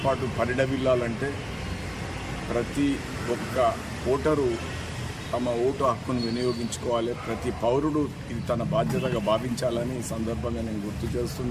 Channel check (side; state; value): both; identical; correlation 1.00